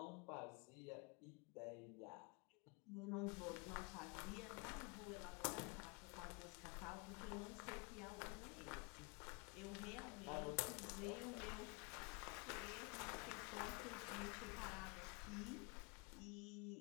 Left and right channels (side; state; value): right; quieter; 31.0 dB